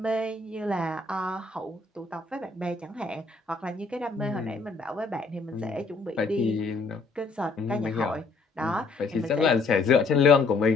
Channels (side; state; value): right; quieter; 3.9 dB